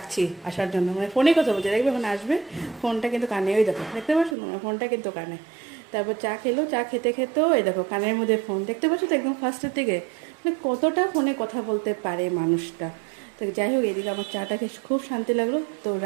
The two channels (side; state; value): left; drops out; at 4.4 s